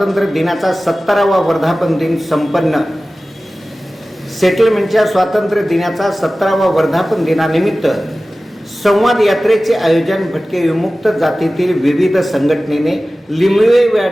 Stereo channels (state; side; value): normal; both; correlation 0.96